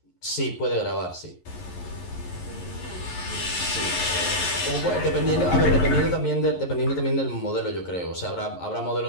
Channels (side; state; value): right; late; 11 ms